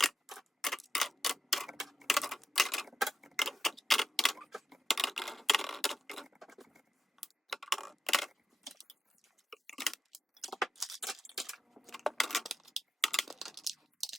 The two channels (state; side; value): normal; both; correlation 0.88